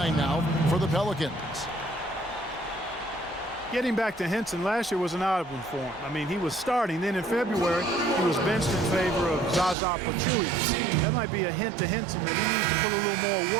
now for the Pelicans. Getting back to Henson, last year was an odd one for him. I mean, he was starting. Then in February, he was benched in favor of Zaza Pachulia. That might be a hint to Henson that he needs to put a little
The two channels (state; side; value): drops out; left; at 9.8 s